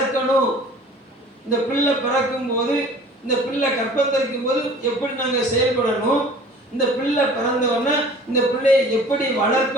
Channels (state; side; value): normal; both; correlation 0.46